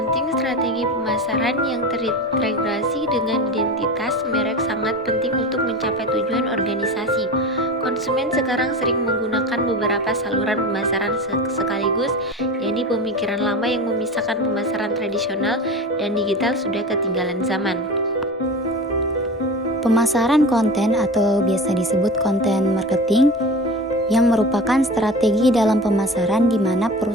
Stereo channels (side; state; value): both; normal; correlation 0.30